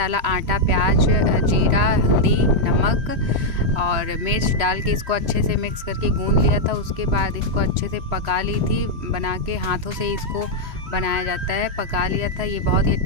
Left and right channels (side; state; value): left; late; 3.0 ms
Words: आटा, प्याज, जीरा, हल्दी, नमक और मिर्च डाल के इसको अच्छे से मिक्स करके गूंद लिया था। उसके बाद इसको अच्छे से पका ली थी, बना के हाथों से इसको बनाया जाता है। पका लिया था। ये बहुत ही